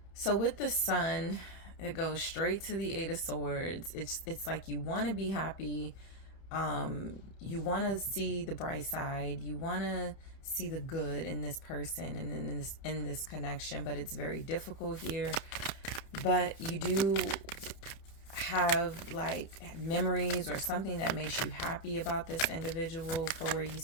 So with the sun, it goes straight to the 8 of Swords. It's like you want to be happy. You want to see the bright side. You want to see the good in this person and in this connection, but it's very difficult here. But you do have like memories or something that makes you happy about this individual for where you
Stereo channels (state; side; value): late; right; 31 ms